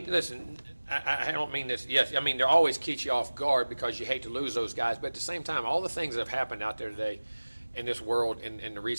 listen, I don't mean this. Yes, I mean, they're always keep you off guard because you hate to lose those guys. But at the same time, all the things that have happened out there today in this world in the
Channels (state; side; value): inverted; both; correlation -1.00